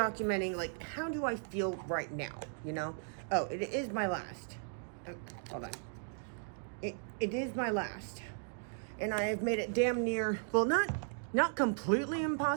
like how do I feel right now, you know? Oh, it is my last. Oh, hold on. It is my last. And I have made it damn near, well, not completely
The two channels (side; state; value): left; silent; digital silence